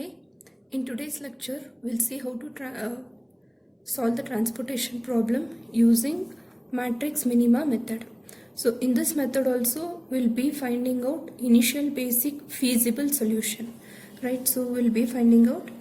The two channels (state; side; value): identical; both; correlation 1.00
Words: in today's lecture we'll see how to solve the transportation problem using matrix minima method. So in this method also we'll be finding out initial basic feasible solution, right? So we'll be finding out